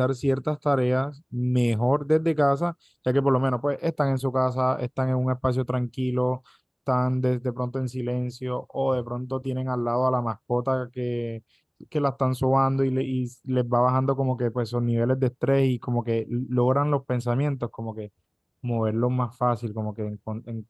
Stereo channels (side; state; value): both; identical; correlation 1.00